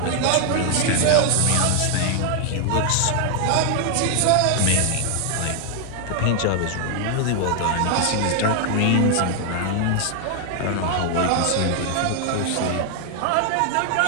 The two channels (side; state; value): both; different; correlation 0.00